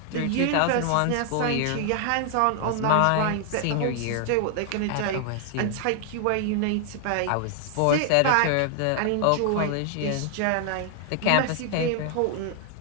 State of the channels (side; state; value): both; different; correlation 0.00